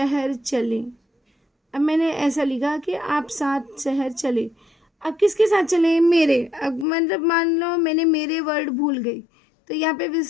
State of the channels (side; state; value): right; drops out; at 6.9 s